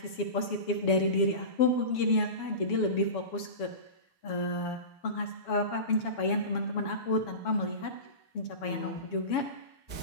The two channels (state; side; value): late; right; 7.2 ms